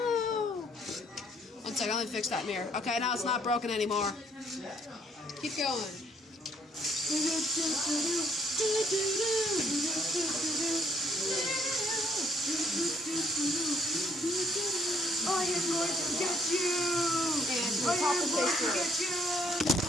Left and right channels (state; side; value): normal; both; correlation 0.67